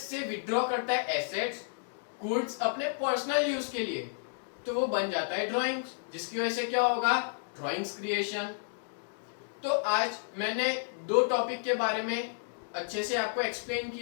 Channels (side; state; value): right; silent; digital silence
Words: से विड्रॉ करता है एसेट्स गुड्स अपने पर्सनल यूज के लिए, तो वो बन जाता है ड्राइंग्स, जिसकी वजह से क्या होगा, ड्राइंग्स क्रिएशन। तो आज मैंने दो टॉपिक के बारे में अच्छे से आपको एक्सप्लेन